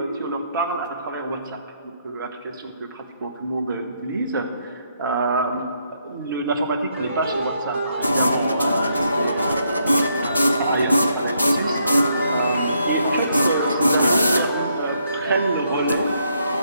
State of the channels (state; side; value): inverted; both; correlation -0.74